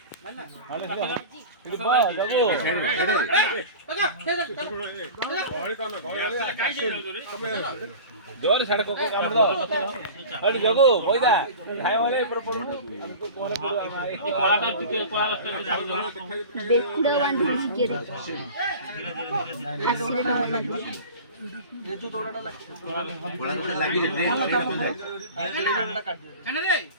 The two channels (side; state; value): both; inverted; correlation -0.36